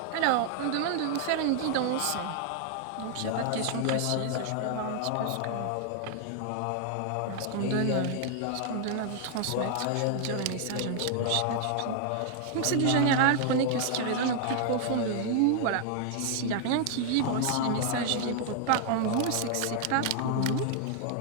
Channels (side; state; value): both; different; correlation 0.00